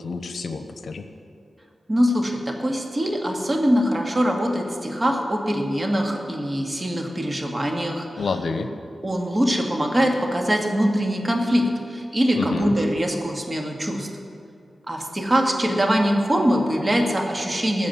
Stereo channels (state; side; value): normal; both; correlation 0.95